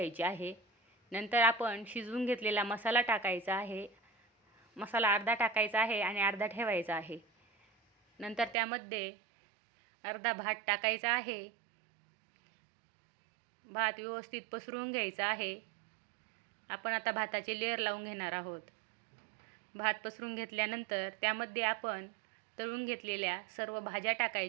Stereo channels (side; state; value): left; drops out; at 8.6 s